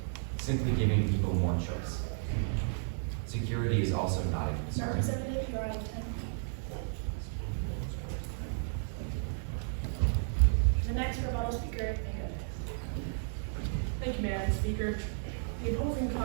simply giving people more choice. Security is also not a concern. Representative, you're out of 10. The next rebuttal speaker, Megan. Thank you, Madam Speaker. The opposing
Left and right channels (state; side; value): silent; left; digital silence